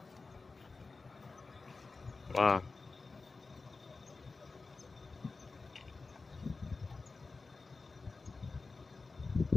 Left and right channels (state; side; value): quieter; right; 4.0 dB